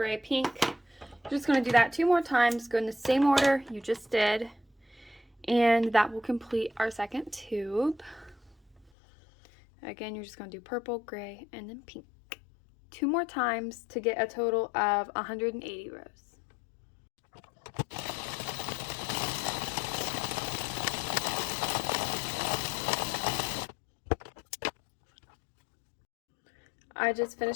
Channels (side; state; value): right; drops out; at 8.9 s